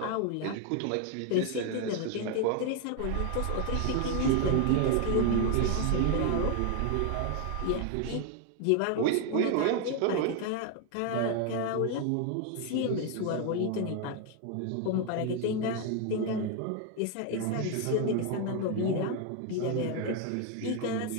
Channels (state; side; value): different; both; correlation 0.01